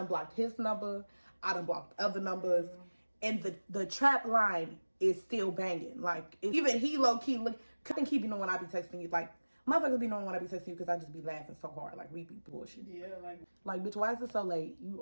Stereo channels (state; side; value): inverted; both; correlation -1.00